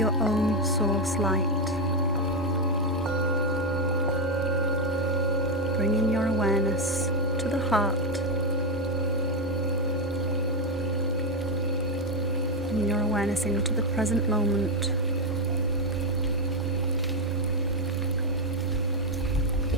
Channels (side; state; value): both; normal; correlation 0.04